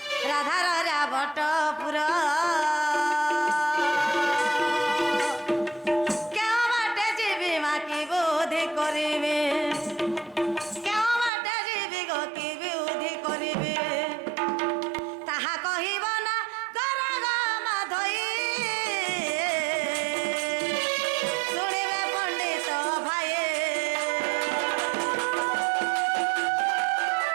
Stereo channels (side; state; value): left; drops out; at 11.3 s